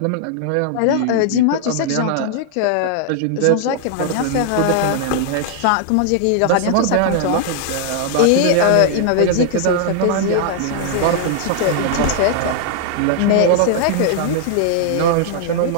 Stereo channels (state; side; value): different; both; correlation -0.01